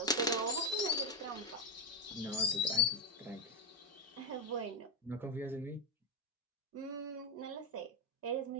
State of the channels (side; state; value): both; normal; correlation 0.07